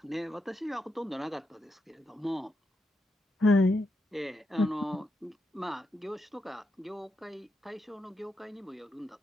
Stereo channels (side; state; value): both; normal; correlation 0.84